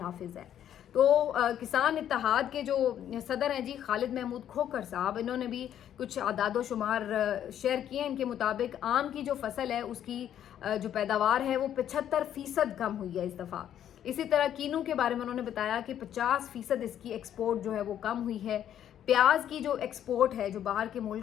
ہے. تو کسان اتحاد کے جو صدر ہیں جی خالد محمود کھوکھر صاحب, انہوں نے بھی کچھ اعداد و شمار شیئر کیے ہیں. ان کے مطابق آم کی جو فصل ہے اس کی جو پیداوار ہے وہ 75% کم ہوئی ہے اس دفعہ. اسی طرح کینو کے بارے میں انہوں نے بتایا کہ 50% اس کی ایکسپورٹ جو ہے وہ کم ہوئی ہے. پیاز کی جو ایکسپورٹ ہے, جو باہر کے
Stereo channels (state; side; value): quieter; right; 10.4 dB